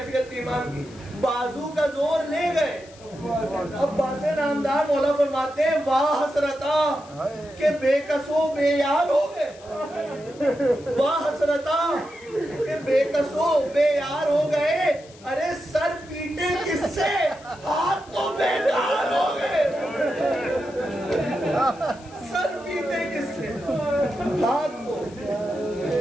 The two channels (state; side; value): noise; left; hiss, 24 dB below the sound